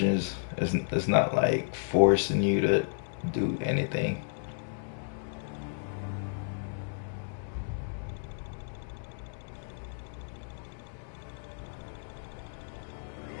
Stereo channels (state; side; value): silent; right; digital silence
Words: It's not like forcing you to do anything.